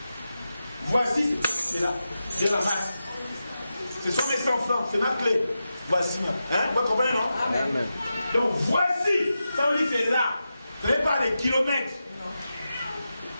Voici, c'est là. C'est la masse. Ce sont mes enfants, c'est ma clé. Voici ma. Hein? Vous comprenez, non? Amen. Donc voici, ça on dit c'est là. Ce n'est pas des kilomètres.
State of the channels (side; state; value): both; inverted; correlation -0.91